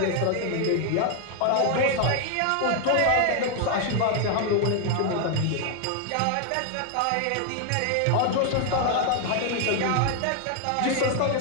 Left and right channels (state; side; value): different; both; correlation 0.00